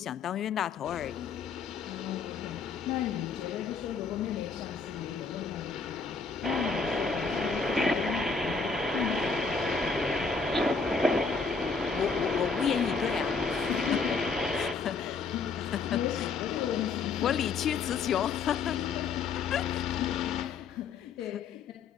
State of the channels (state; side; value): quieter; right; 4.9 dB